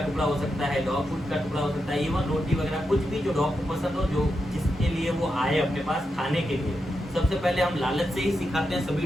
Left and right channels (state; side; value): normal; both; correlation 0.86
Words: टुकड़ा हो सकता है, डॉग फूड का टुकड़ा हो सकता है, इवन रोटी वगैरह, कुछ भी जो डॉग को पसंद हो, जो जिसके लिए वो आए अपने पास खाने के लिए। सबसे पहले हम लालच से ही सिखाते हैं